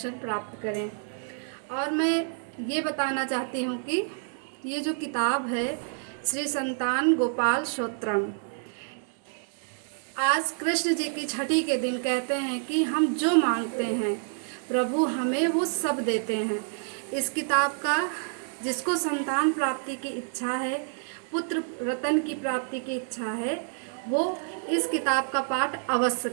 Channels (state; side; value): silent; left; 57 dB below the other